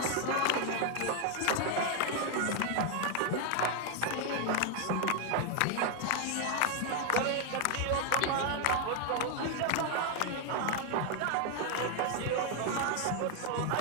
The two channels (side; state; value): both; different; correlation 0.00